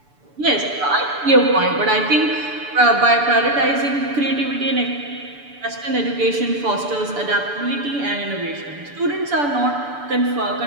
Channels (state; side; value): late; left; 6.9 ms